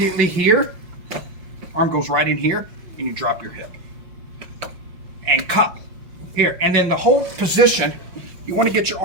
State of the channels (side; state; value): left; late; 5.7 ms